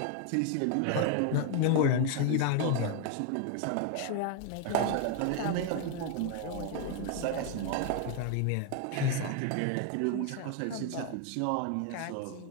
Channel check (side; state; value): both; different; correlation 0.00